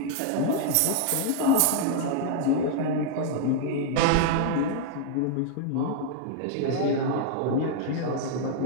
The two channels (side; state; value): both; different; correlation 0.00